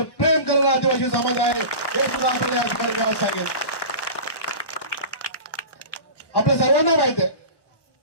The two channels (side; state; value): right; late; 1.1 ms